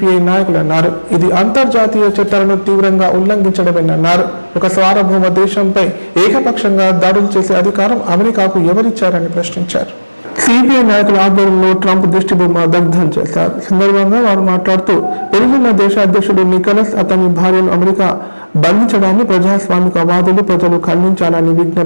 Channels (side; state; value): both; inverted; correlation -1.00